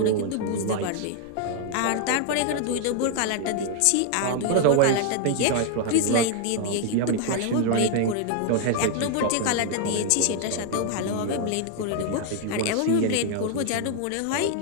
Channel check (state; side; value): different; both; correlation 0.00